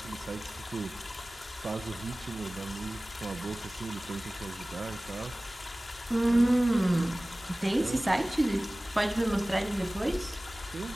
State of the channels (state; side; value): normal; both; correlation 0.98